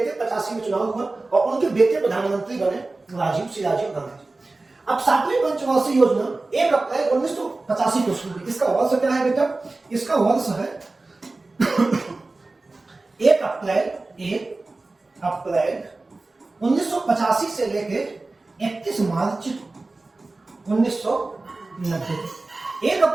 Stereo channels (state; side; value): quieter; left; 3.3 dB